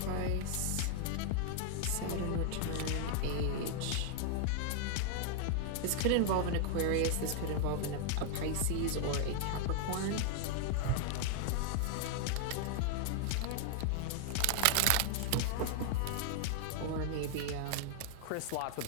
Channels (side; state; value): both; different; correlation 0.00